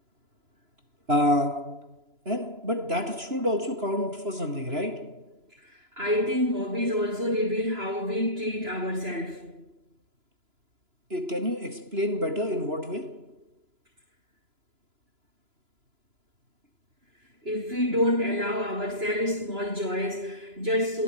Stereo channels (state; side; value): late; left; 2.9 ms